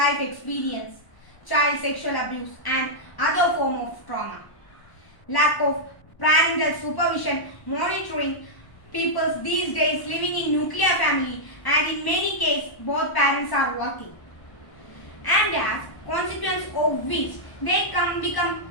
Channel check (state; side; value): late; right; 1.1 ms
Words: experience, child sexual abuse and other form of trauma. Lack of parental supervision, monitoring, people these days living in nuclear family and in many cases both parents are working. And as consequence of which they become